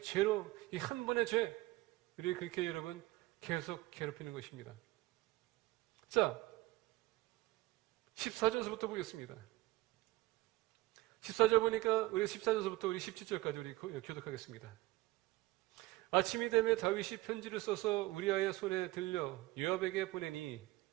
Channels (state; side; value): quieter; left; 19.1 dB